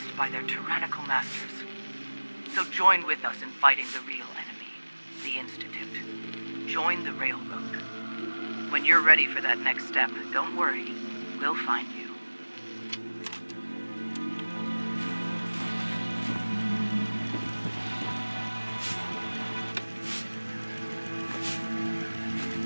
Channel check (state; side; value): inverted; both; correlation -1.00